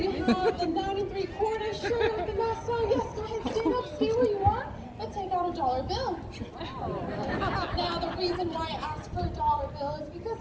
have the 9 3/4 shirt with the mask on. Yes, go ahead, stand up, stay where you are, and take out a dollar bill. Now, the reason why I asked for a dollar bill is because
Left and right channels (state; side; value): identical; both; correlation 1.00